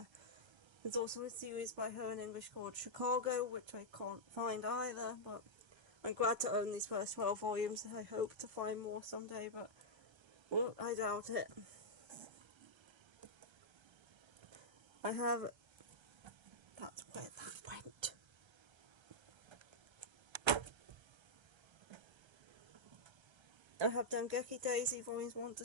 There's also a series by her in English called Chicago, which I can't find either, but I'm glad to own these first 12 volumes. I hope to find more someday, but well, I doubt it. I have... That's where that went. I have Dengeki Daisy volumes 1 to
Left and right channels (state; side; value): late; left; 1.3 ms